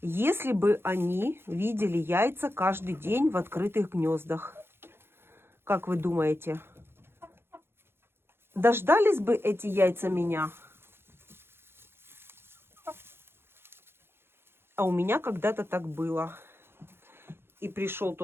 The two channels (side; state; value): left; late; 0.11 ms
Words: если бы они видели яйца каждый день в открытых гнездах, как вы думаете, дождались бы эти яйца меня? А у меня когда-то так было. И пришел